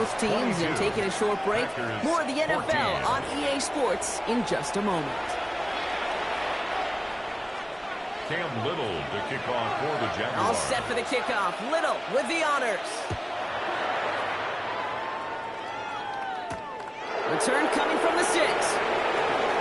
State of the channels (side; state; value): both; identical; correlation 1.00